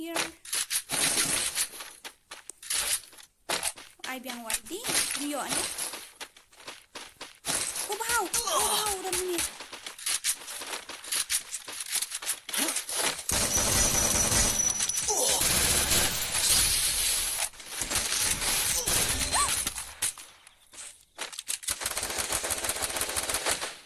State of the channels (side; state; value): both; identical; correlation 1.00